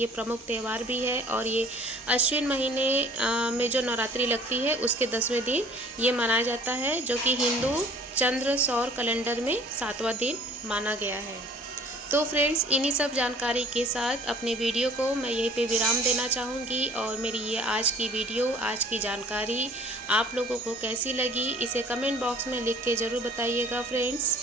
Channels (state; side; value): normal; both; correlation 0.52